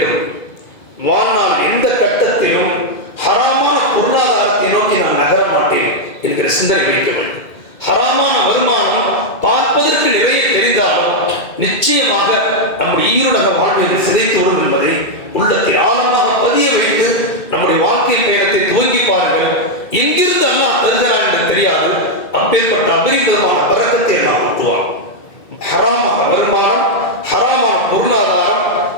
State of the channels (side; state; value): right; late; 2.2 ms